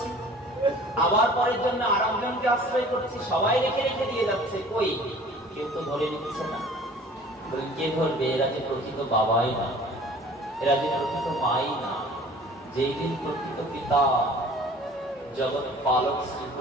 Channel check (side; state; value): both; normal; correlation 0.48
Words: আবার পরের জন্য আরেকজনকে আশ্রয় করছি। সবাই রেখে রেখে দিয়ে যাচ্ছে, কই কেউ তো ধরে নিচ্ছে না। কে ধরবে? এরা যে প্রকৃত বাবাই না, এরা যে প্রকৃত মাই না। যেই দিন প্রকৃত পিতা জগৎ পালক